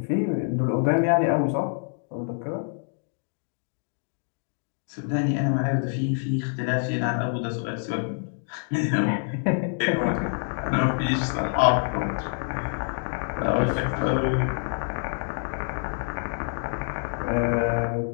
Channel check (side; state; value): right; silent; 61 dB below the other